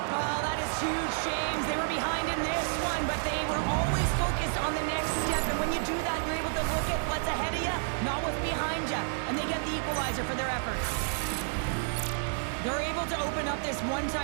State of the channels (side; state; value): left; silent; 58 dB below the other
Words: Well, that is huge, James. They were behind in this one, but they were always focused on the next step. And when you do that, you're able to look at what's ahead of you, not what's behind you. And they get the equalizer for their efforts. They're able to open up this